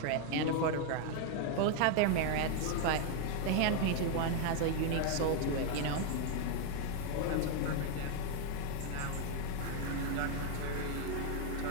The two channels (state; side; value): different; both; correlation 0.01